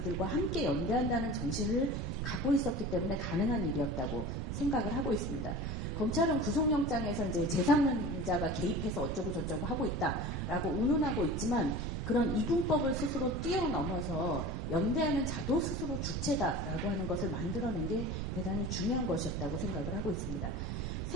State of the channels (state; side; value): noise; right; rumble, 3 dB below the sound